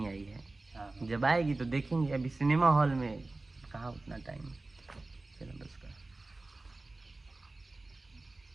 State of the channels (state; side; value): quieter; left; 3.1 dB